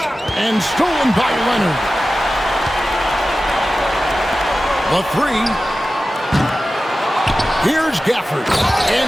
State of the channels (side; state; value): both; normal; correlation 0.95